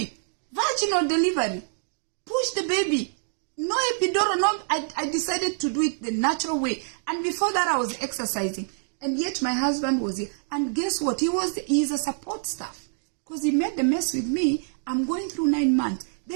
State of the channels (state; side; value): silent; left; digital silence